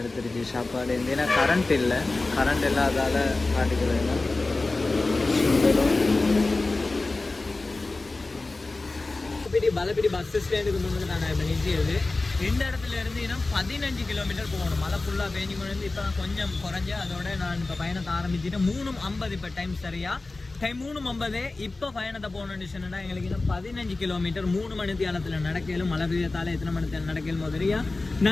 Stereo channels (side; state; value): right; quieter; 3.3 dB